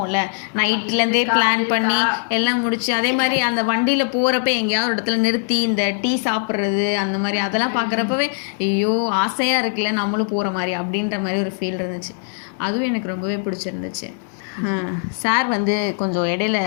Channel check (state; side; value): silent; right; 61 dB below the other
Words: நைட்லேருந்தே பிளான் பண்ணி எல்லாம் முடிச்சு. அதே மாதிரி அந்த வண்டியில் போகிறப்ப எங்கேயாவது ஒரு இடத்துல நிறுத்தி இந்த டீ சாப்பிட்றது அந்த மாதிரி அதெல்லாம் பார்க்குறப்பவே ஐயோ ஆசையாக இருக்குல்ல நம்மளும் போகிற மாதிரி அப்படின்ற மாதிரி ஒரு ஃபீல் இருந்துச்சு. அதுவும் எனக்கு ரொம்பவே பிடிச்சிருந்துச்சு. சார் வந்து கொஞ்சம் இடையில